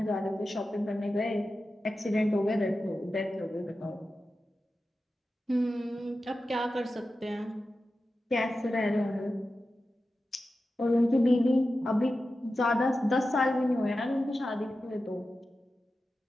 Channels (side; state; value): both; normal; correlation 0.93